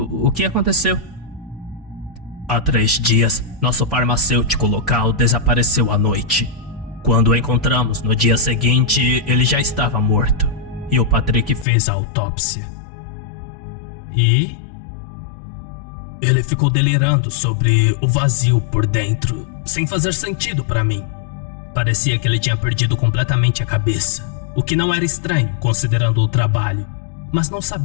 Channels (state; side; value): drops out; right; at 11.7 s